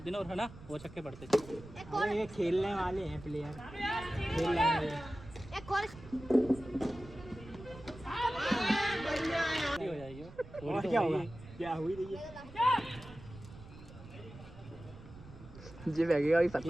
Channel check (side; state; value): right; noise; rumble, 17 dB below the sound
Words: ना, और है ना वो छक्के पड़ते। अरे ये खेलने वाले हैं प्लेयर, खेलने वाले। एक और हो जाएगी वो। और क्या होगा? क्या हुई रही है? जी बैगेगा अभी